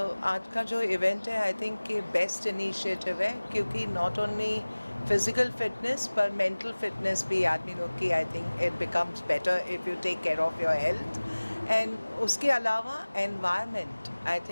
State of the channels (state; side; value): inverted; both; correlation -1.00